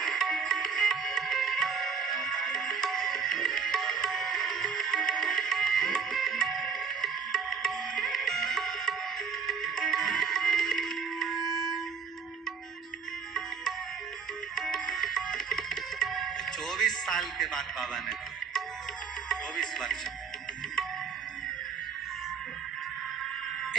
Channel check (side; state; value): left; quieter; 6.3 dB